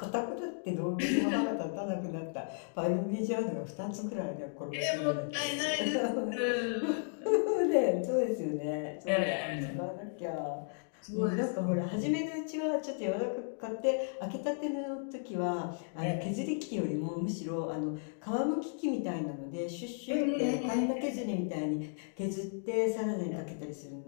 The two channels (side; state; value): right; silent; digital silence